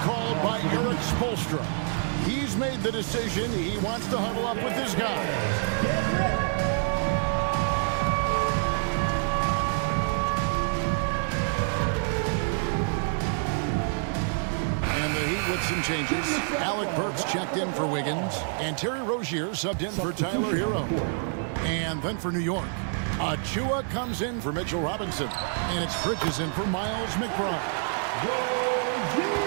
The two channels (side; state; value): left; silent; 56 dB below the other